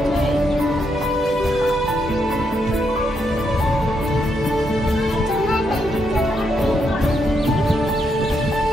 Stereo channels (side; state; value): both; normal; correlation 0.79